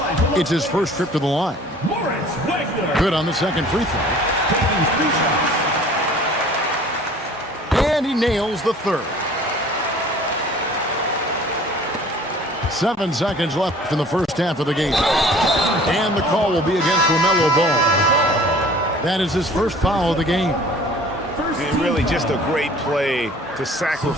It's his first trip to the line. Good on the second free throw. And he nails the third. 7 seconds left in the first half of the game. And the call will be against LaMelo Ball. That is his first foul of the game. And really just a great play to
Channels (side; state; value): both; normal; correlation 0.49